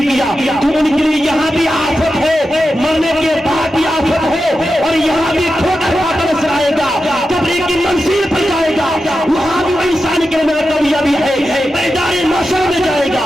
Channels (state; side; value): normal; both; correlation 0.90